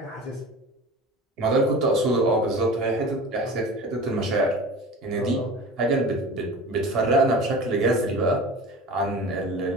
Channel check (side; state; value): both; normal; correlation 0.36